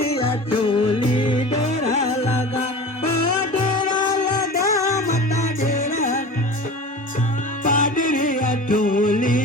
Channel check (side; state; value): both; normal; correlation 0.36